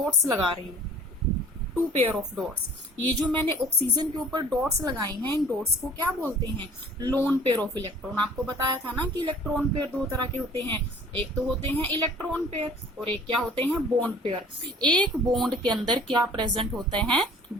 लगा रही हूँ, टू पेयर ऑफ डॉट्स। ये जो मैंने ऑक्सीजन के ऊपर डॉट्स लगाई हैं, इन डॉट्स को क्या बोलते हैं? Lone pair of electron. आपको बताया था ना कि इलेक्ट्रॉन पेयर दो तरह के होते हैं, एक तो होते हैं इलेक्ट्रॉन पेयर और एक क्या होते हैं? Bond pair. एक बॉन्ड के अंदर क्या प्रेजेंट होते हैं?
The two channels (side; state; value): both; normal; correlation 0.50